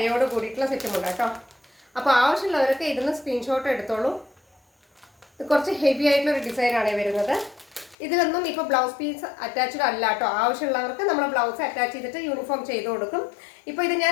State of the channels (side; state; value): right; drops out; at 8.0 s